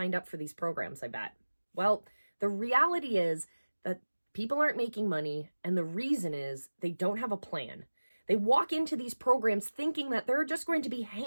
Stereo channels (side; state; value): both; inverted; correlation -1.00